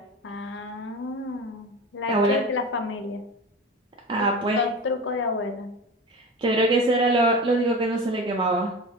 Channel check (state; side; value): normal; both; correlation 0.31